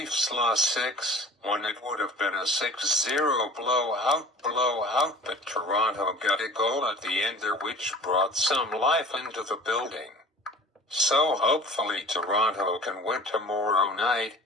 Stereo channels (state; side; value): normal; both; correlation 0.44